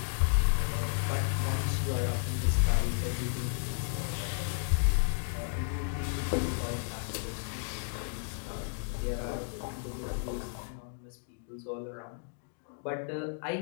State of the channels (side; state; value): right; silent; digital silence